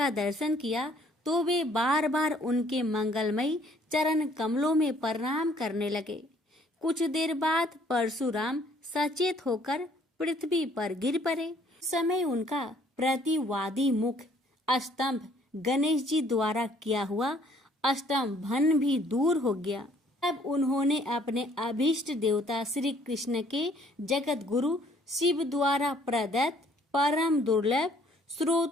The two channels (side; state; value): both; normal; correlation 0.61